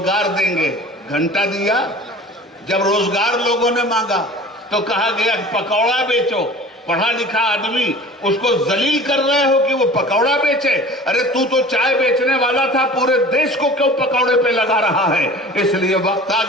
देंगे। घंटा दिया। जब रोजगार लोगों ने मांगा तो कहा गया पकौड़ा बेचो। पढ़ा लिखा आदमी, उसको जलील कर रहे हो कि वो पकौड़ा बेचे। अरे तू तो चाय बेचने वाला था, पूरे देश को क्यों पकौड़े पे लगा रहा है? इसलिए वक्त आ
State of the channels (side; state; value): both; normal; correlation 0.42